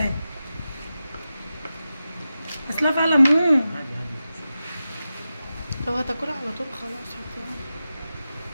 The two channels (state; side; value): inverted; both; correlation -0.92